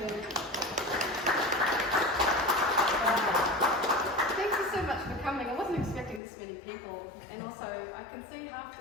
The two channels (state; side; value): drops out; right; at 6.2 s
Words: Thank you so much for coming. I wasn't expecting this many people, and also I can see half